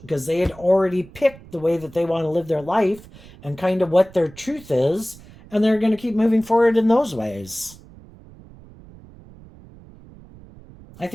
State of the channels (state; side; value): noise; right; rumble, 21 dB below the sound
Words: because they had already picked the way that they want to live their life and kind of what their truth is, and they're going to keep moving forward in those ways. I